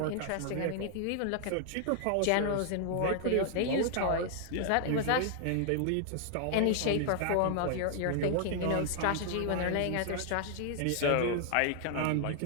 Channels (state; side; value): different; both; correlation 0.00